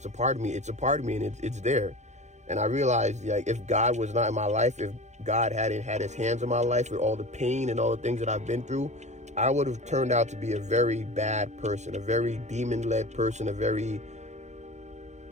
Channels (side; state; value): left; late; 0.33 ms